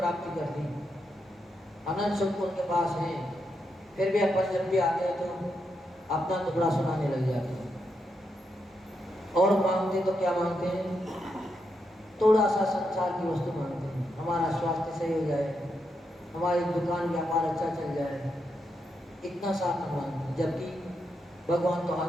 कर ली, अनंत सुख उनके पास है, फिर भी अपन जब भी आते हैं तो अपना टुकड़ा सुनाने लग जाते हैं। और मांगते तो क्या मांगते हैं? थोड़ा सा संसार की वस्तु मांगते हैं, हमारा स्वास्थ्य सही हो जाए, हमारी दुकान व्यापार अच्छा चल जाए, इतना सा मांगते हैं। जबकि भगवान तो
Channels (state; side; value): normal; both; correlation 0.83